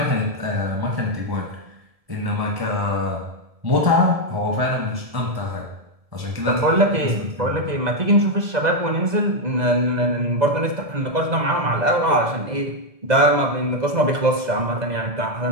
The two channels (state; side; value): late; left; 2.0 ms